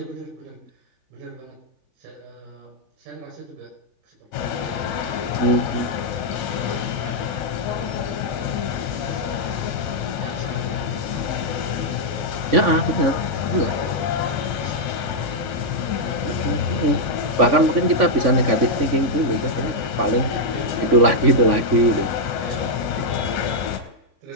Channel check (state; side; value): late; left; 3.5 ms